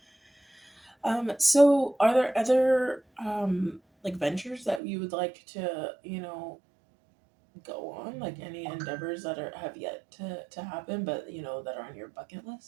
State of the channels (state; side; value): drops out; left; at 4.8 s